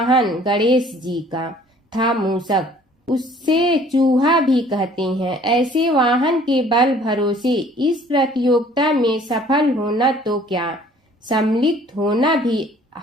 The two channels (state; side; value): normal; both; correlation 0.55